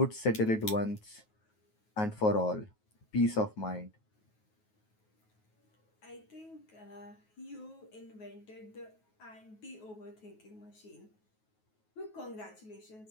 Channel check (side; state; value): right; late; 9.4 ms